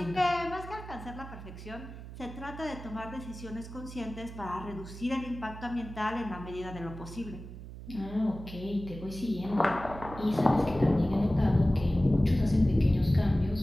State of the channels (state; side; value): noise; right; hum, 12 dB below the sound